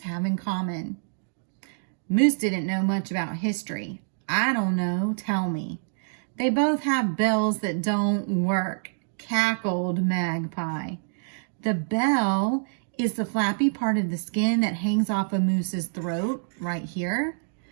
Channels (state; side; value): silent; left; digital silence